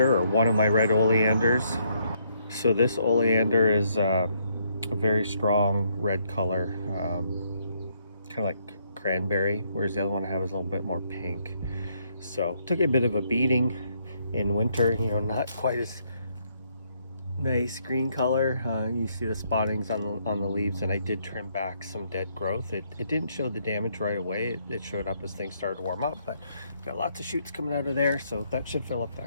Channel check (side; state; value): both; inverted; correlation -0.72